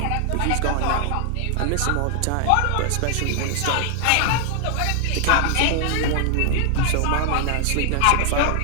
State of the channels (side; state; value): both; different; correlation 0.00